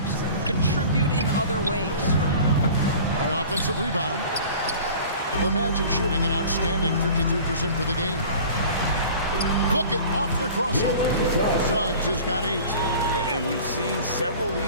contribute in other ways. The offensive rebound. The Magic shooting an outstanding 53% for the game. Look it off the crossover. Suggs has got 8. And we've seen several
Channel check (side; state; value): both; inverted; correlation -0.42